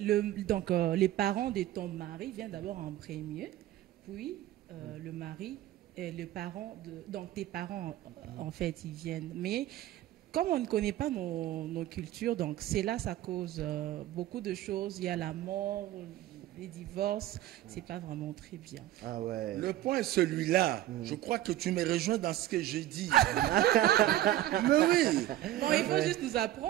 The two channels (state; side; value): quieter; left; 14.0 dB